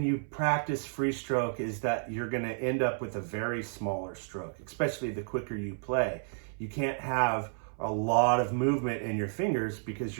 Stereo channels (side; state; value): left; silent; 57 dB below the other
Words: you practice free stroke is that you're going to end up with a very smaller stroke, especially the quicker you play. You can't have a lot of movement in your fingers because